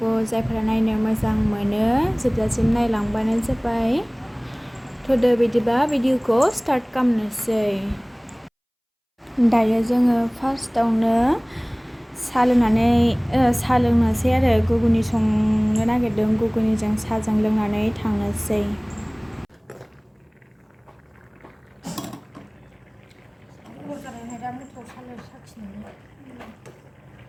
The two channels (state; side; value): identical; both; correlation 1.00